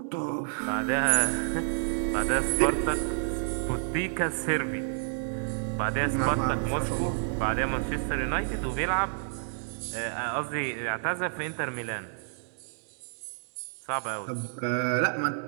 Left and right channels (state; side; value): silent; left; digital silence